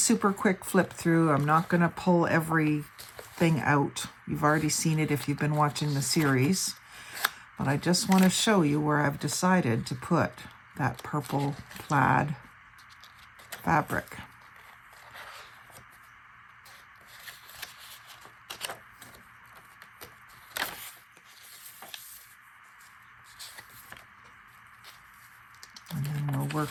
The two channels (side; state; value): both; identical; correlation 1.00